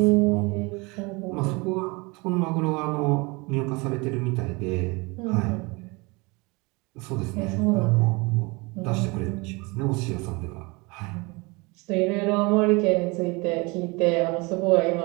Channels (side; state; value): left; quieter; 26.4 dB